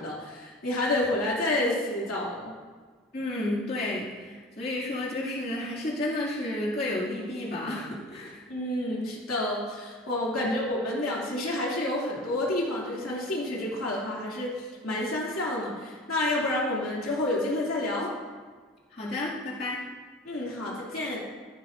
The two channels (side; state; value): both; normal; correlation 0.38